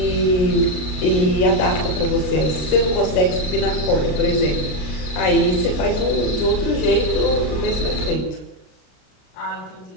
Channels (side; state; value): right; late; 33 ms